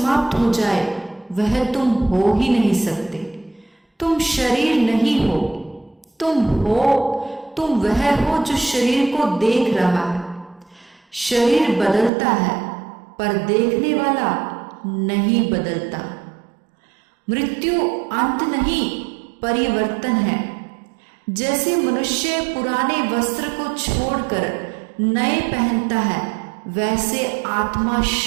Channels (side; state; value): left; drops out; at 12.1 s